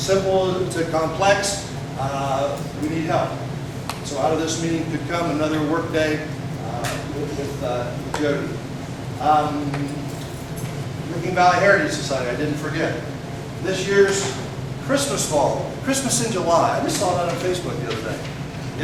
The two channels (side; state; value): both; identical; correlation 1.00